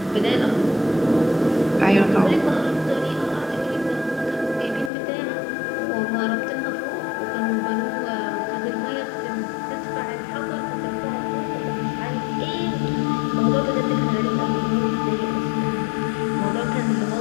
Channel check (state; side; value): drops out; right; at 4.9 s